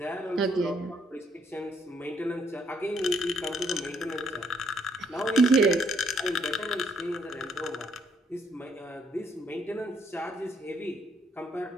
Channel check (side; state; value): both; normal; correlation 0.70